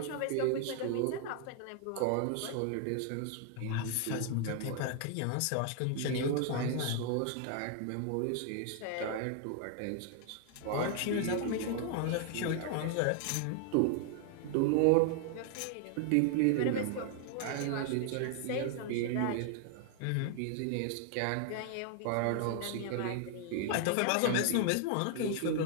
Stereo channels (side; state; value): both; different; correlation 0.00